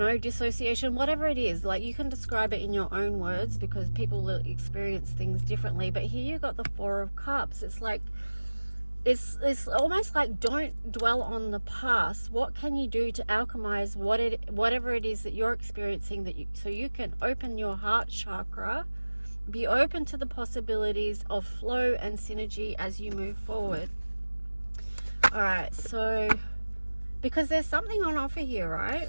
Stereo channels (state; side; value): inverted; both; correlation -1.00